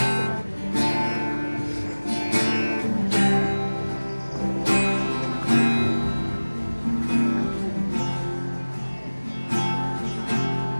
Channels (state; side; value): inverted; both; correlation -1.00